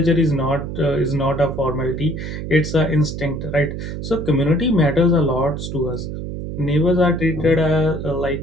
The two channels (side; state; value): right; noise; hum, 6 dB below the sound